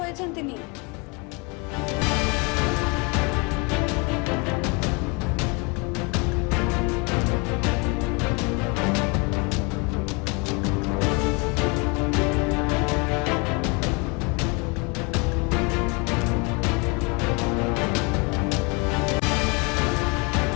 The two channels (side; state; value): right; quieter; 30.0 dB